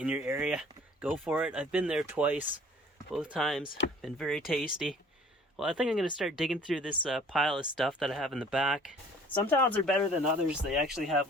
your area, go for it. I've been there twice, both times. Been very tasty. Well, I think I'm going to start digging through this pile of stuff that I have in the back. Some towns are better than others. They actually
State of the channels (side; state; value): both; normal; correlation 0.52